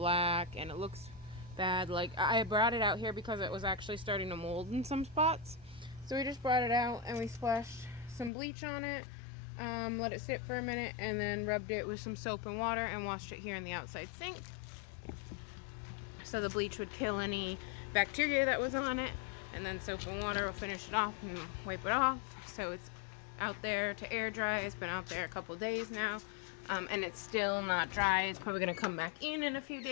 and it looks bad. Like, I brought it out here because it was actually starting to mold in some spots. So we just brought it out and we splashed some bleach on it, let it sit for a minute, and then rubbed it with some soap and water and washed it here in the outside sink. So the bleach would kill any bacteria that was on it, and then soap and water will finish it off and wipe it off. So it's out there to air dry. It's been out there a couple days now, and it's still not dry. It's probably going to come back in a few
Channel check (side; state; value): right; drops out; at 8.3 s